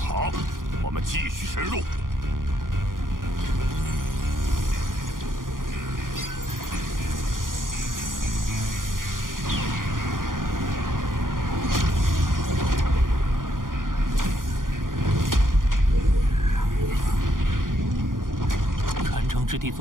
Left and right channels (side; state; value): left; late; 0.90 ms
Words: 我们继续深入。之地